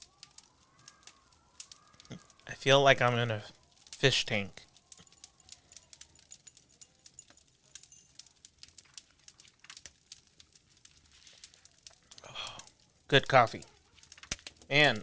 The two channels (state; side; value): identical; both; correlation 1.00